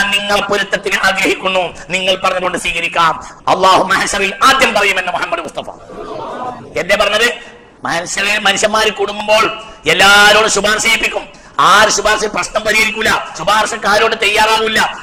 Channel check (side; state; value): both; identical; correlation 1.00